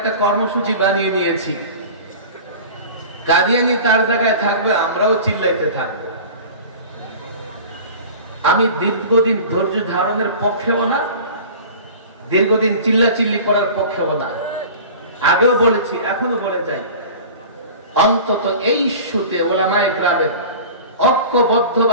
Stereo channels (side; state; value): both; inverted; correlation -0.38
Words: কর্মসূচি বানিয়ে নিয়েছি। কাদিয়ানী তার জায়গায় থাকবে, আমরাও চিল্লাইতে থাকবো। আমি দীর্ঘদিন ধৈর্য ধারণের পক্ষেও না, দীর্ঘদিন চিল্লাচিল্লি করার পক্ষেও না। আগেও বলেছি, এখনো বলে যাই, অন্তত এই ইস্যুতে ওলামায়ে কেরামের